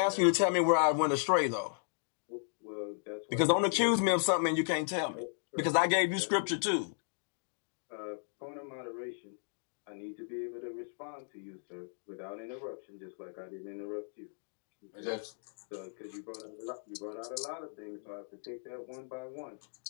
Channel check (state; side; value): silent; right; digital silence